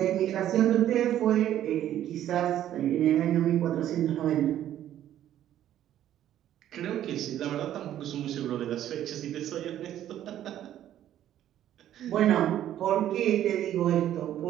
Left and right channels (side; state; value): left; quieter; 11.7 dB